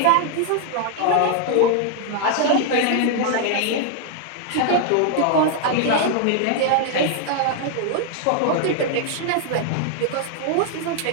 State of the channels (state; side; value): different; both; correlation 0.00